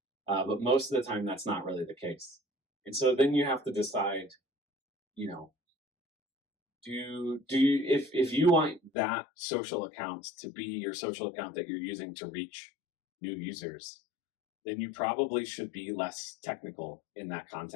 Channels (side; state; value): right; drops out; at 8.9 s